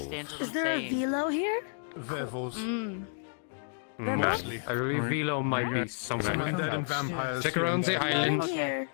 what Is I'm there a saying. velo here? Werewolves. I believe Velo might be Some somewhere. undead and vampires. Stick here around and the there. island. Here.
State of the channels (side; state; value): right; silent; digital silence